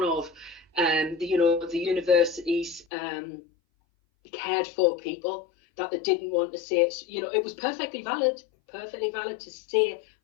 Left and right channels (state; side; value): drops out; right; at 2.9 s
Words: of the university's cared for people, that they didn't want to say it. It was perfectly valid to say,